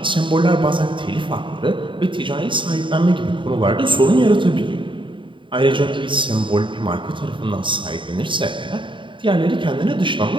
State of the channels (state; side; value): late; left; 0.24 ms